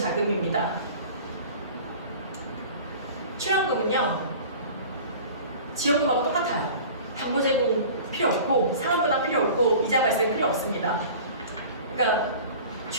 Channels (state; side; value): inverted; both; correlation -0.41